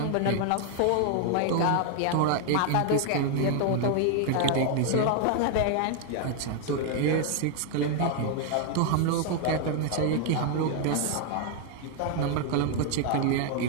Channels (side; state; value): both; different; correlation 0.00